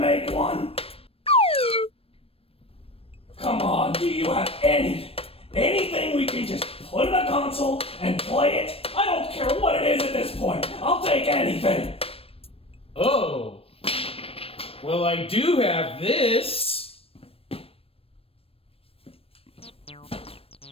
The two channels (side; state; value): right; late; 0.28 ms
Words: one? Come on, do you have anything we can just put in a console and play it? I don't care what it is at this point. I'll take anything. Oh. Well, I do have this.